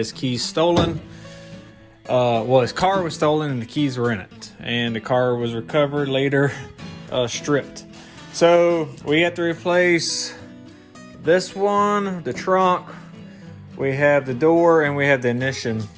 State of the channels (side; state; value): both; identical; correlation 1.00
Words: keys stolen. Well, his car was stolen and the keys were in it. And the car was recovered later, stripped. So we have to replace this one, the trunk, we have the door, and we have the ignition.